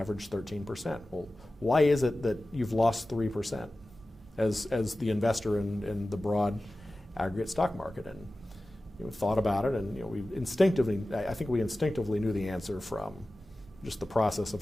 13%. Well, why is it that you've lost 3% as the investor in the broad aggregate stock market? And thought about it, and I think we instinctively knew the answer from just the process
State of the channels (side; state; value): both; normal; correlation 0.96